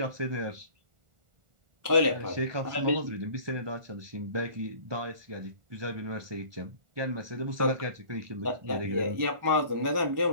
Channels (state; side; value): late; left; 1.4 ms